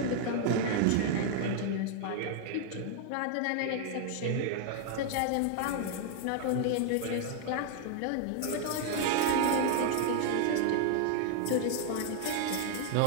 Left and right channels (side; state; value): both; different; correlation 0.00